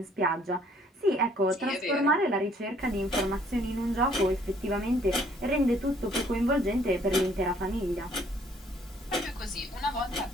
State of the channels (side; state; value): both; normal; correlation 0.62